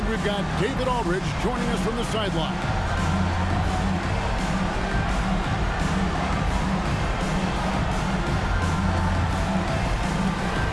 we've got David Aldridge joining us from the sideline.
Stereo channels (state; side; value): identical; both; correlation 1.00